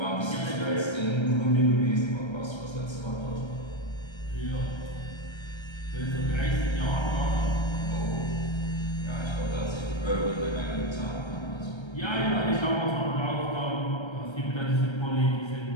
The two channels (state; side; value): late; right; 1.3 ms